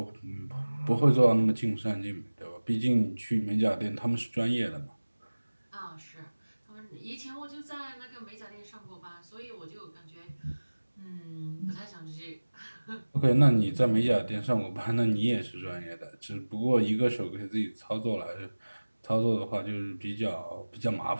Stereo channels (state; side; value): inverted; both; correlation -1.00